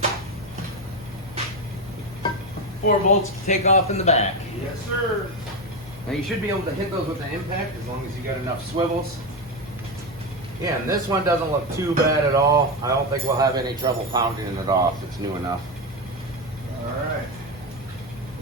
4 bolts to take off in the back. Yes, sir. Now you should be able to hit those with an impact as long as you got enough swivels. Yeah, and this one doesn't look too bad at all. I don't think we'll have any trouble pounding it off. It's new enough. All right.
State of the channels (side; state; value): both; normal; correlation 0.14